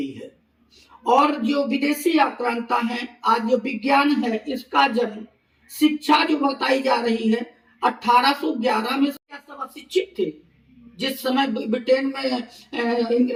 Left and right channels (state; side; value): identical; both; correlation 1.00